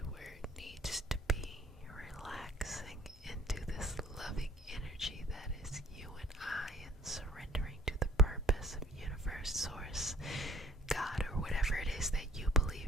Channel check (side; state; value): both; normal; correlation 0.55